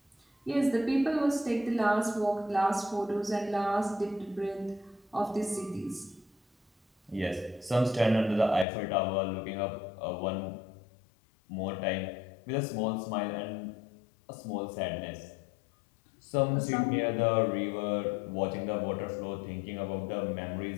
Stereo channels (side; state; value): right; drops out; at 8.7 s